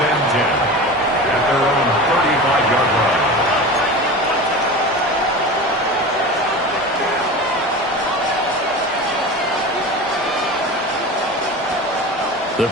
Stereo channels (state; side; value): normal; both; correlation 0.31